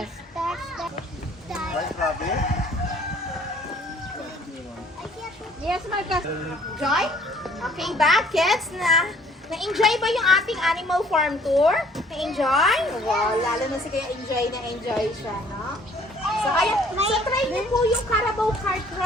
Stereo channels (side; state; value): both; normal; correlation 0.57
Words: That's the. Right, rabbit? Yes, Marcus. Joy? Okay ba, kids? Na-enjoy ba yung ating animal farm tour? Na-enjoy? Wow, lalo na si Kaya enjoy siya, no? So, try niyo po yung Carabao Cart